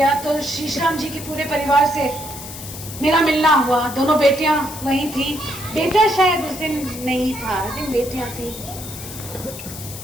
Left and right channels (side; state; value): left; noise; hiss, 12 dB below the sound